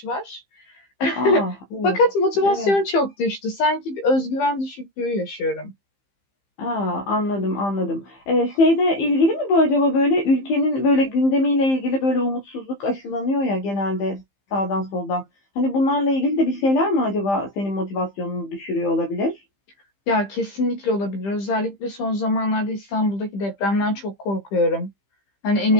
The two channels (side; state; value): right; late; 15 ms